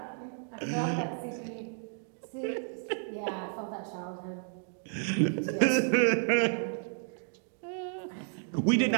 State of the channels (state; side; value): silent; left; digital silence